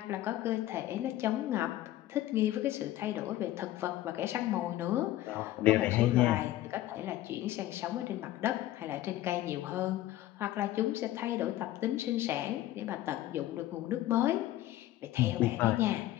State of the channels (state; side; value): quieter; right; 14.8 dB